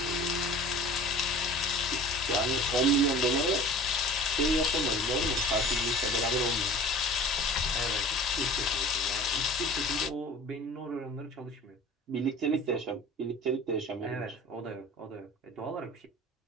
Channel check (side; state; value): both; normal; correlation 0.42